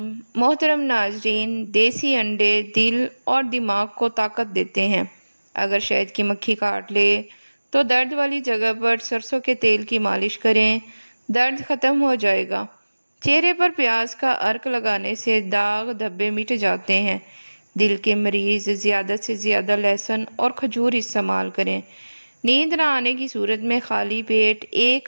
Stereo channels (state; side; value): inverted; both; correlation -1.00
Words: محترم ناظرین، دیسی انڈے دل اور دماغ کو طاقت دیتے ہیں۔ اگر شہد کی مکھی کاٹ لے تو درد والی جگہ پر سرسوں کے تیل کی مالش کریں، درد ختم ہو جائے گا۔ چہرے پر پیاز کا عرق لگانے سے داغ دھبے مٹ جاتے ہیں۔ دل کے مریض زیادہ سے زیادہ لہسن اور کھجور استعمال کریں۔ نیند نہ آنے کی صورت میں خالی پیٹ